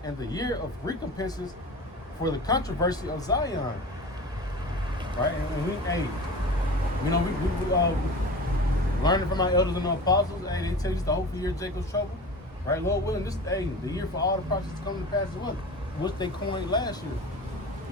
and the year of recompenses for the controversy of Zion. Right? And we learning from our elders and the apostles, hey, they tell you it's the hopeful year of Jacob's trouble. Right? Lord willing, this the year for all the prophets to come to pass as well, which they coined last year.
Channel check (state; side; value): normal; both; correlation 0.35